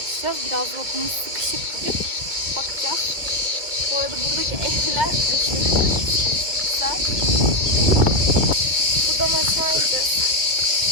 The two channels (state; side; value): late; left; 2.2 ms